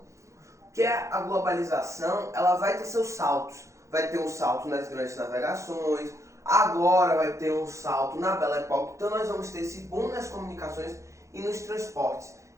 Que a globalização, ela vai ter seus saltos. Vai ter um salto nas grandes navegações, agora vai ter um salto na Belle Époque. Então nós vamos ter esse boom nas comunicações e nos transportes.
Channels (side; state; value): left; late; 0.15 ms